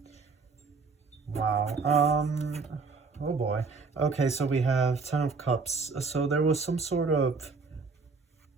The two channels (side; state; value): left; quieter; 4.5 dB